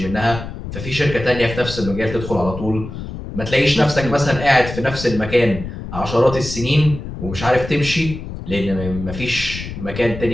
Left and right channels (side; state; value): left; noise; rumble, 9 dB below the sound